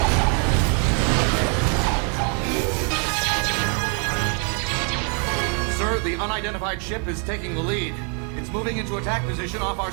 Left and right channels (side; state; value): left; quieter; 39.5 dB